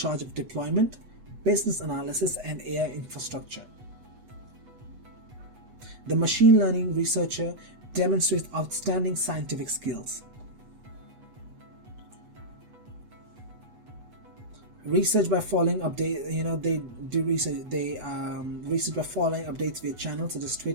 of deployment, business analysis, and AI infrastructure. The machine learning researcher demonstrates outstanding scientific skills. Research by following updates. They do research. They research by following updates via channels such as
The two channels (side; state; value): left; late; 8.2 ms